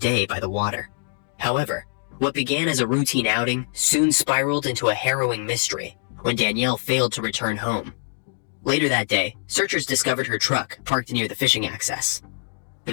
by the water. However, what began as a routine outing soon spiraled into a harrowing mystery when Danielle failed to return home. Later that day, searchers discovered her truck parked near the fishing access. The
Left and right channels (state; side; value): silent; right; digital silence